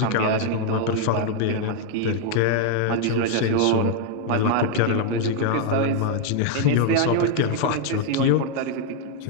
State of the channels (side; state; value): both; different; correlation 0.00